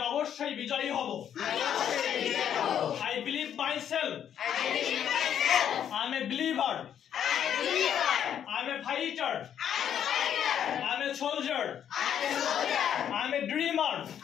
অবশ্যই বিজয়ী হব I believe myself I'm a believer I'm a fighter I'm a soldier I'm a dreamer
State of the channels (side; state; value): right; quieter; 9.3 dB